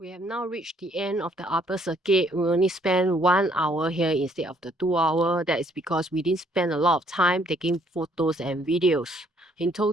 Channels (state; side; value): normal; both; correlation 0.65